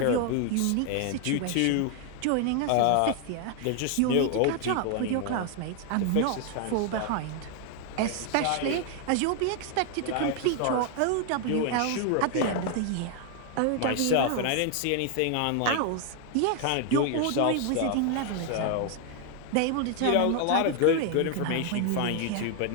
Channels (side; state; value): both; different; correlation 0.00